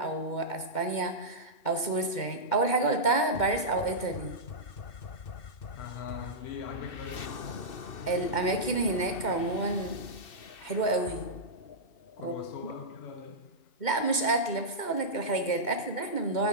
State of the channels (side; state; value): right; late; 2.1 ms